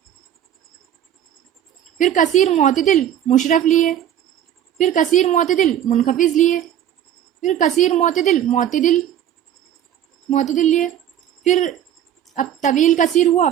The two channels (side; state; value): left; quieter; 10.4 dB